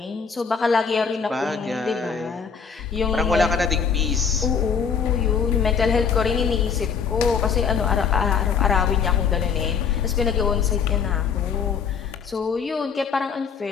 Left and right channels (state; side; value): quieter; right; 6.4 dB